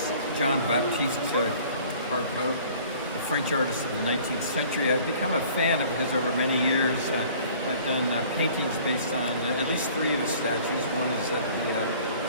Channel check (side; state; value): both; inverted; correlation -0.51